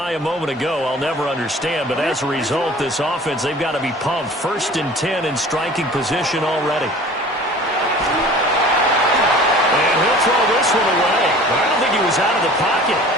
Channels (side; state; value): both; normal; correlation 0.45